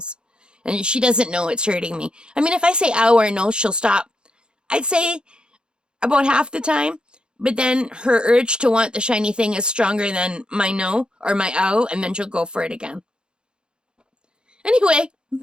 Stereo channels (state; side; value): late; left; 0.050 ms